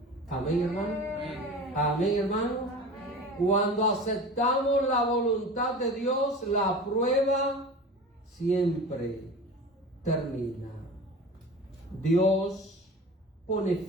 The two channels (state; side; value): normal; both; correlation 0.35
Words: Amén, hermano. Amén, hermano. Cuando aceptamos la voluntad de Dios, la prueba siempre termina. Dios pone